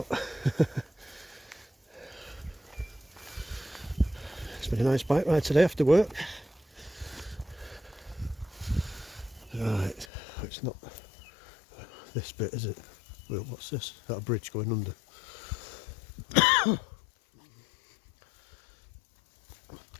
It's been a nice bike ride today after work. Right, it's not this bit, is it? Well, what's this? Is that a bridge going under?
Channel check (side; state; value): right; drops out; at 10.1 s